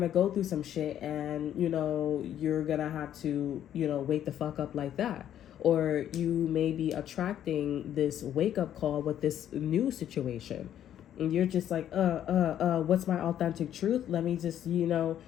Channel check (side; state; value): right; quieter; 10.7 dB